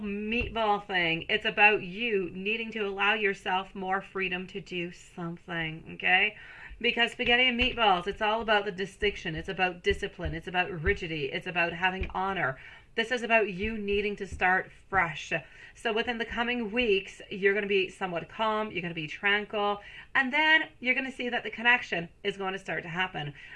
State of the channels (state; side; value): identical; both; correlation 1.00